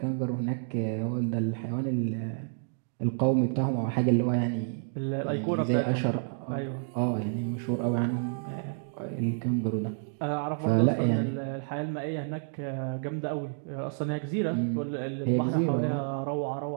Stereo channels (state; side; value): silent; left; digital silence